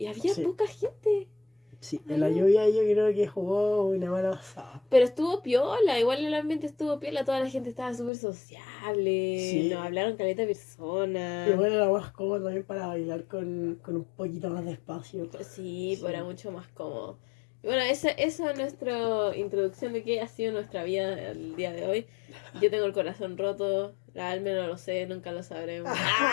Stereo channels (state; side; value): drops out; right; at 8.1 s